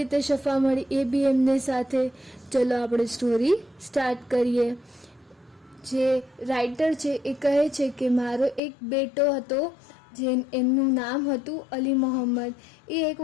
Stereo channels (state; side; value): drops out; right; at 8.6 s